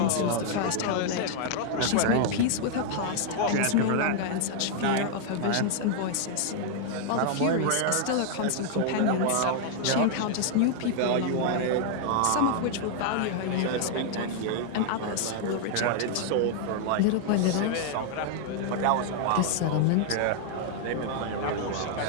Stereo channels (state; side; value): different; both; correlation 0.00